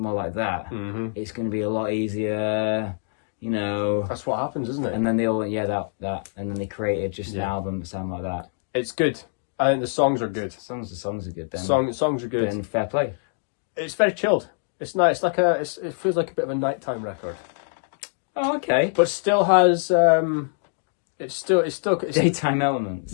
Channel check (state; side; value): silent; right; digital silence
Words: like that, it's gonna be a lot easier. That's what happens, isn't it? And then they all went, that, and then they created just an album that sounded like that. It's good. I think the songs are good. The songs are good. Then songs are good. Then fair play. It's very chilled. It's nice. It feels like a bit of a nighttime record. Oh, okay. But still has it's daytime elements.